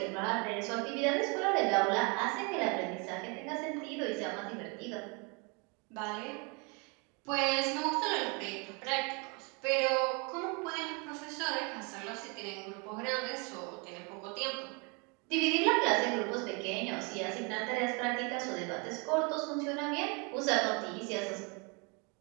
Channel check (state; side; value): quieter; left; 32.0 dB